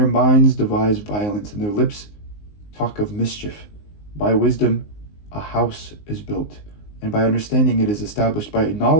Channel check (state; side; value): late; right; 19 ms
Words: minds devise violence, and their lips talk of mischief. By wisdom a house is built, and by understanding it is established. By